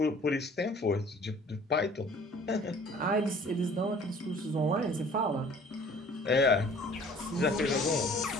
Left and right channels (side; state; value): both; normal; correlation 0.51